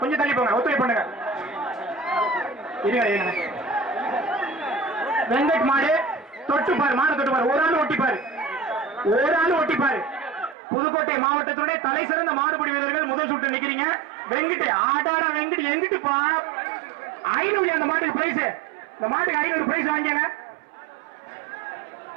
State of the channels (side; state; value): left; drops out; at 10.6 s